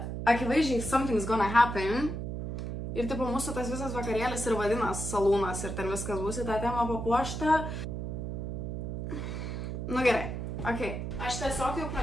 akivaizdžiai something's gonna happen. Ir tipo mūsų tas visas vakarėlis ir vadinas salūnas ir ten viskas bus į tą temą papuošta. Nu gerai, okei. Aš tiesiog jau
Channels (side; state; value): right; noise; hum, 4 dB below the sound